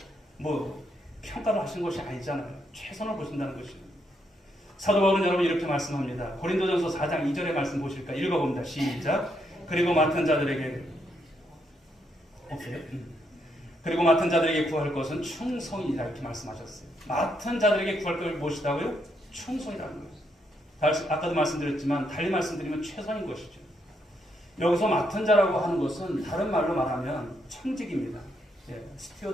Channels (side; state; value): both; normal; correlation 0.77